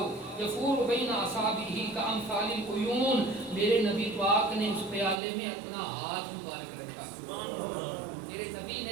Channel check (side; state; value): left; drops out; at 5.2 s